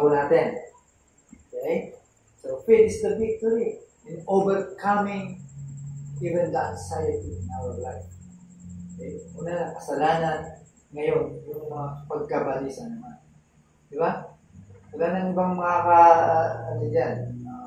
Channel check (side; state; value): both; identical; correlation 1.00